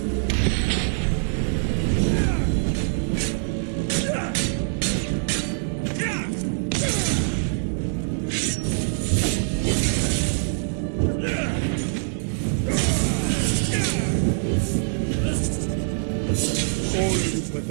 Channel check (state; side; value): silent; left; 60 dB below the other